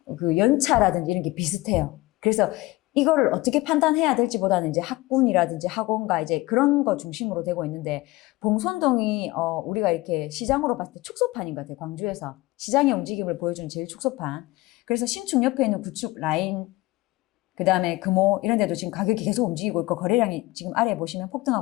그 연차라든지 이런 게 비슷해요. 그래서 이거를 어떻게 판단해야 될지보다는 이제 학군이라든지 학원가 이제 그런 거 중심으로 되고 있는데, 봉선동이 우리가 이렇게 시장으로 봤을 때 축소판인 것 같아요. 광주에서 시장의 움직임을 보여주는 제일 축소판. 그래서 신축 옆에 있는 구축 라인, 그 다음에 금호 이런 데도 지금 가격이 계속 움직이고 있고, 거래량이 지금 아래에 보시면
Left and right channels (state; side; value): quieter; right; 20.1 dB